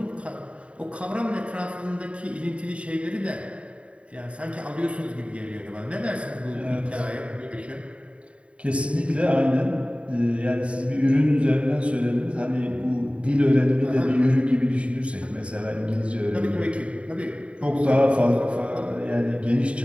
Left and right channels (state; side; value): late; left; 0.062 ms